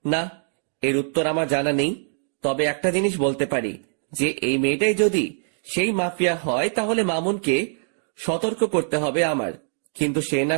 না, এর উত্তর আমার জানা নেই। তবে একটা জিনিস বলতে পারি, যে এই মেয়েটাই যদি সেই মাফিয়া হয় তাহলে মামুনকে সতর্ক করতে হবে আমার। কিন্তু সে না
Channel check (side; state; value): left; silent; digital silence